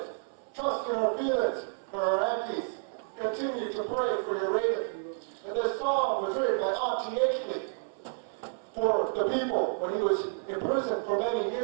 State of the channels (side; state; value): left; silent; 58 dB below the other